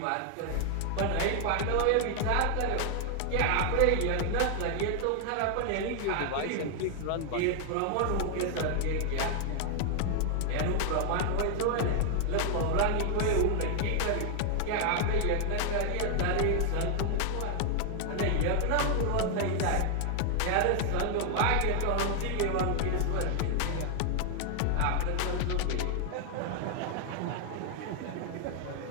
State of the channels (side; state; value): both; different; correlation 0.00